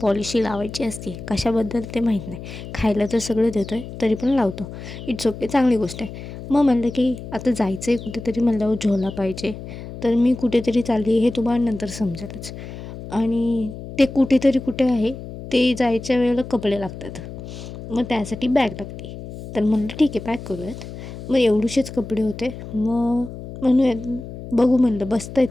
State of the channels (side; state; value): left; noise; hum, 11 dB below the sound